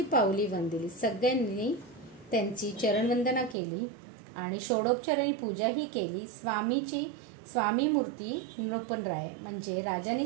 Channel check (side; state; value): left; drops out; at 3.6 s